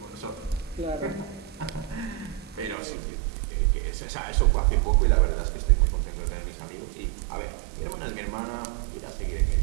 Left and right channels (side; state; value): left; drops out; at 2.8 s